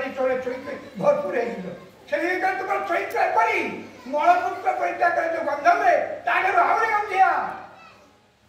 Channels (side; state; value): both; identical; correlation 1.00